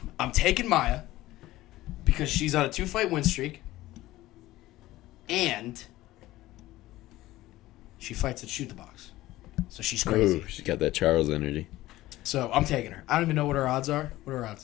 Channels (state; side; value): quieter; right; 16.7 dB